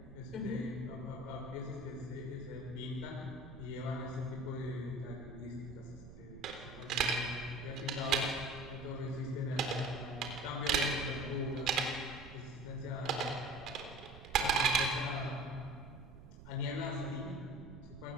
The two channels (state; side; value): noise; right; rumble, 15 dB below the sound